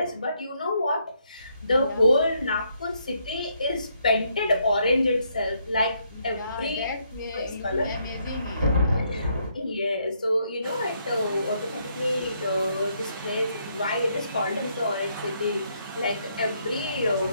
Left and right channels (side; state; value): both; inverted; correlation -0.74